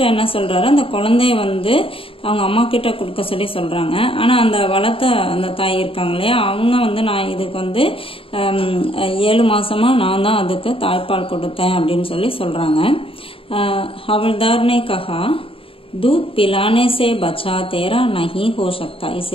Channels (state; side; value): late; right; 0.26 ms